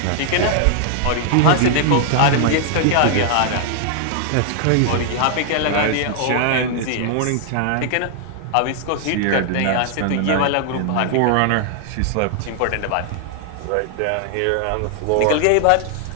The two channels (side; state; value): both; different; correlation 0.00